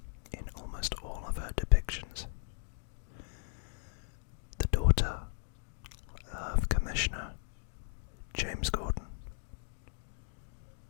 in almost all of her depictions. The daughter of Commissioner James Gordon,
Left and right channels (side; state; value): right; silent; digital silence